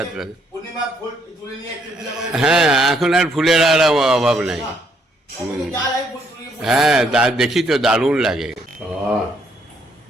হ্যাঁ, এখন আর ফুলের আর অভাব নাই। হ্যাঁ, দেখি তো দারুণ লাগে।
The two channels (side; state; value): both; normal; correlation 0.70